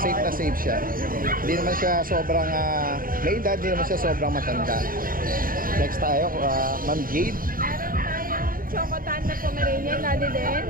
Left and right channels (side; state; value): left; late; 0.41 ms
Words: na safe siya. Hindi naman siya sobrang may edad, hindi naman siya sobrang matanda. Next tayo, Ma'am Jade. Meron tayong Chocotan na Pomeranian, Daddy